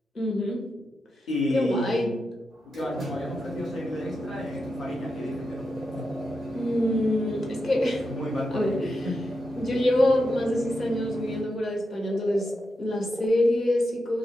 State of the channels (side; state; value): both; normal; correlation 0.87